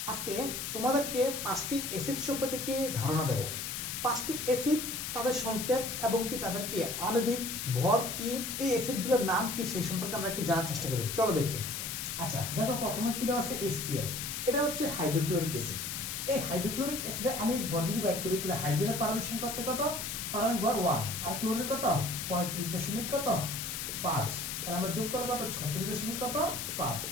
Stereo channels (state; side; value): noise; left; hiss, 4 dB below the sound